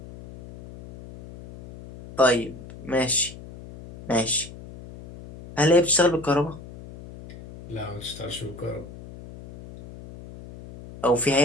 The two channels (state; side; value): noise; left; hum, 16 dB below the sound